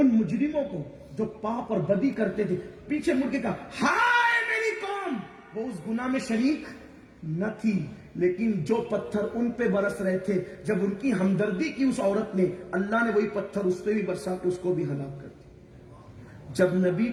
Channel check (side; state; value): both; identical; correlation 1.00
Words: مجرموں کو جو پاپ اور بدی کرتے تھے. پیچھے مڑ کے کہا ہائے میری قوم. وہ اس گناہ میں شریک نہ تھی, لیکن جو پتھر ان پہ برس رہے تھے جب ان کی ہمدردی کی اس عورت نے, اللہ نے وہی پتھر اس پہ بھی برسا کے اس کو بھی ہلاک کر دیا. جب نبی